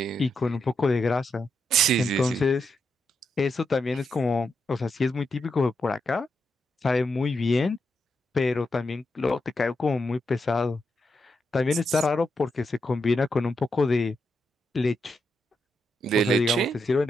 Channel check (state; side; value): normal; both; correlation 0.84